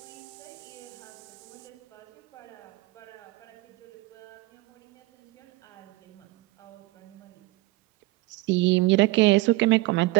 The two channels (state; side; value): quieter; left; 20.2 dB